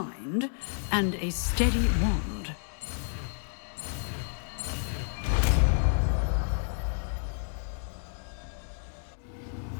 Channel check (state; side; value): silent; right; digital silence